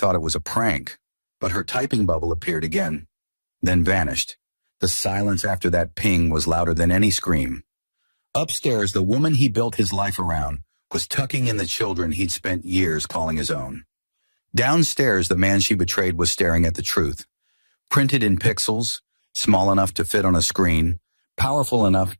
it was a prank, but her typing bubble appeared again, then vanished. The silence after that ping was louder than any scream. Upstairs, the woman he built his life around was tucking in the children he'd spent years calling his own. Downstairs, the man she betrayed was staring at the truth, printed in pixels, small enough to fit on a screen, powerful enough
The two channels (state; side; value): inverted; both; correlation -1.00